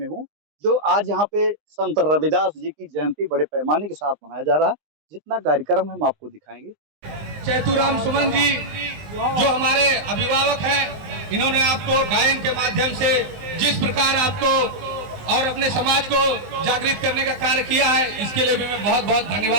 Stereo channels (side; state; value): left; late; 20 ms